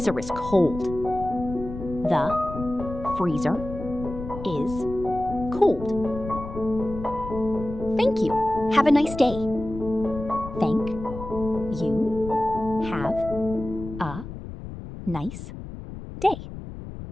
is cold. The freezer is cold. Thank you. Have a nice day. Thank you. Have a nice day.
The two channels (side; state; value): left; noise; rumble, 10 dB below the sound